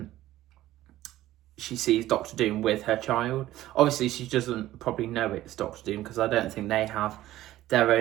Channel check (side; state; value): left; quieter; 14.8 dB